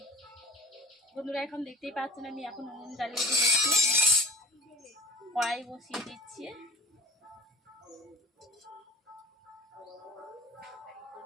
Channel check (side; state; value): both; normal; correlation 0.41